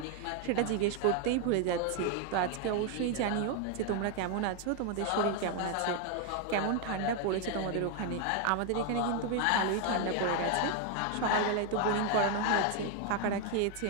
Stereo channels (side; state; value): both; different; correlation 0.01